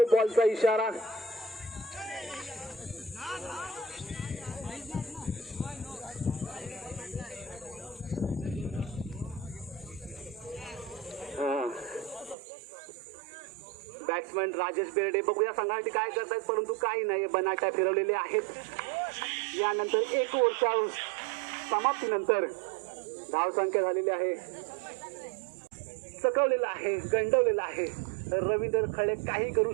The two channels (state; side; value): drops out; left; at 12.4 s